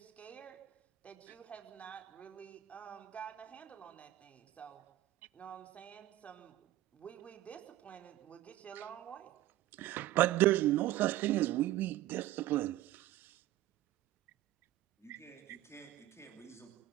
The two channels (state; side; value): quieter; left; 15.1 dB